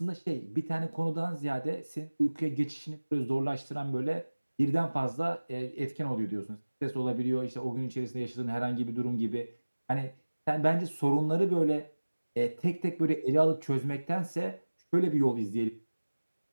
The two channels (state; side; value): inverted; both; correlation -1.00